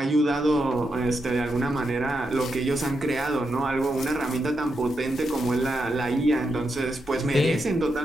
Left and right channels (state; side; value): normal; both; correlation 0.84